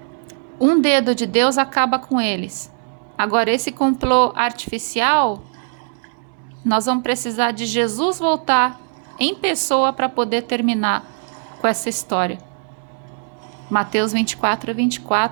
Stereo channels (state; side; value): silent; left; digital silence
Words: um dedo de Deus acaba com eles. Agora, esse complô artificial, nós vamos precisar de Jesus voltar em pessoa para poder terminar com essa história. Mateus